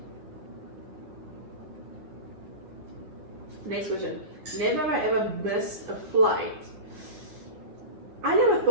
Next question. Never have I ever missed a flight. I never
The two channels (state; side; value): late; left; 9.8 ms